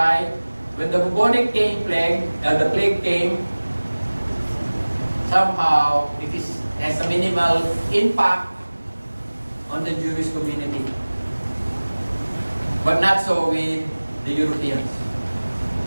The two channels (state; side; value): inverted; both; correlation -1.00